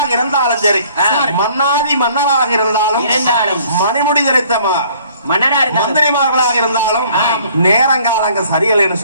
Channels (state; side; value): inverted; both; correlation -0.57